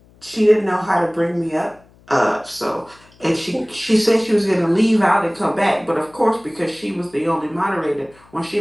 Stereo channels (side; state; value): left; noise; hum, 29 dB below the sound